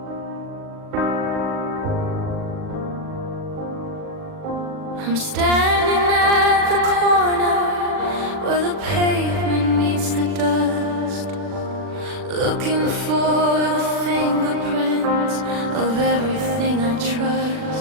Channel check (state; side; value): late; left; 40 ms